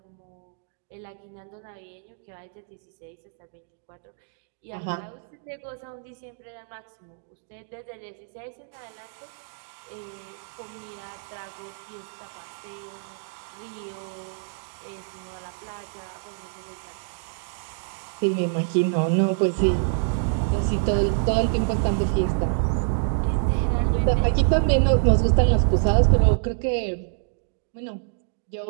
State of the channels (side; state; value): left; silent; digital silence